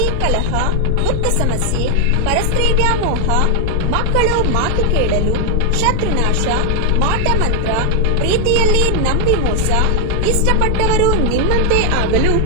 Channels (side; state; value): both; different; correlation 0.00